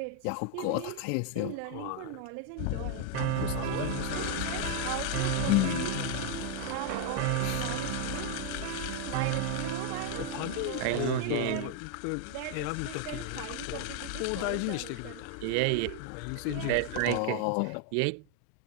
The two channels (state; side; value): different; both; correlation 0.01